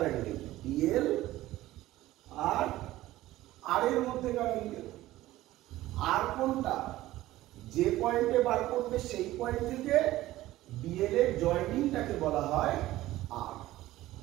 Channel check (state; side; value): quieter; left; 16.0 dB